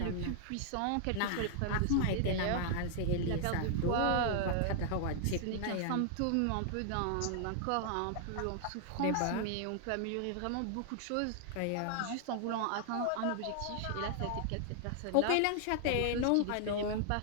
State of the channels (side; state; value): both; different; correlation 0.00